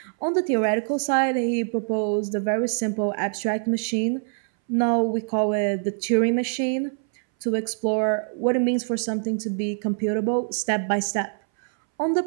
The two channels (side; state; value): left; silent; 61 dB below the other